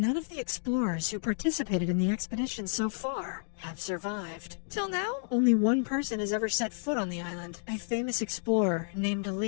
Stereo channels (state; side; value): silent; right; digital silence